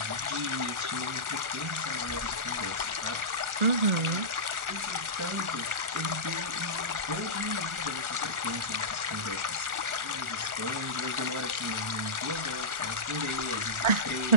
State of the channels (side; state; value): left; late; 1.4 ms